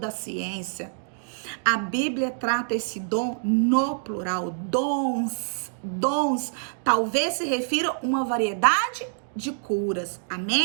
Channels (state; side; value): silent; left; digital silence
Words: ciência. A Bíblia trata esse dom no plural, dons, talvez se refira a uma variedade de curas,